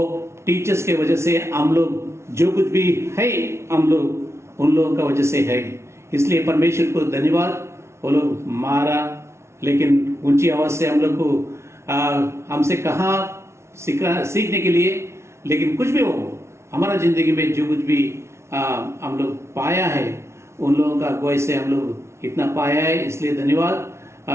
टीचर्स के वजह से हम लोग जो कुछ भी है हम लोग उन लोगों का वजह से है। इसलिए परमेश्वर को धन्यवाद। वो लोग मारा लेकिन ऊंची आवाज से हम लोग को हमसे कहा सीखने के लिए, लेकिन कुछ भी हो हमारा जिंदगी में जो कुछ भी हम लोग पाया है उन लोगों का अगुवाई से हम लोग इतना पाया है। इसलिए धन्यवाद।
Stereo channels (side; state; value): left; late; 0.13 ms